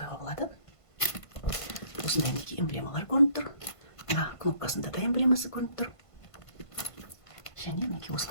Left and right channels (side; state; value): right; late; 1.5 ms